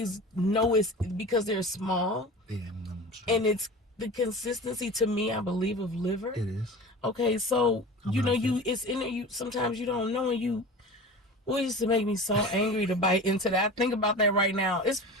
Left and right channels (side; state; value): both; normal; correlation 0.34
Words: know it's because they're small. Yeah, sure. And it's the consistency to me, I believe, of liver. It is. Okay, so it's in there. You sometimes you don't know, and you. Well, it used to make me so angry to bite into that. I think about that right now. It's